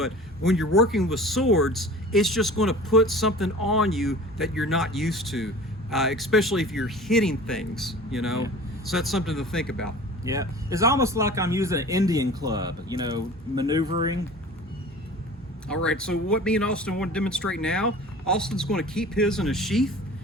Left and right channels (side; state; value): both; normal; correlation 0.40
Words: when you're working with swords, it's just going to put something on you that you're not used to, especially if you're hitting things, you know. Yeah. So that's something to think about. Yeah, it's almost like I'm using an Indian club, you know, maneuvering. All right, so what me and Austin want to demonstrate now, Austin's going to keep his in a sheath,